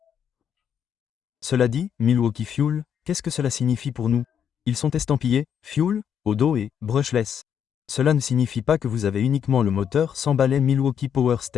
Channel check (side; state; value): right; quieter; 8.3 dB